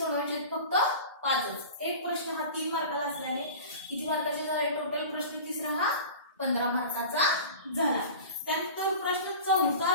फक्त 5च. एक प्रश्न हा 3 मार्काला असल्याने किती मार्काचे झाले? टोटल प्रश्न तिसरा हा 15 मार्काचा झाला. त्यानंतर प्रश्न चौथा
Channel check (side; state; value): both; inverted; correlation -0.36